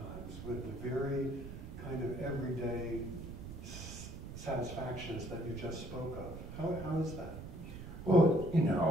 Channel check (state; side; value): noise; right; rumble, 10 dB below the sound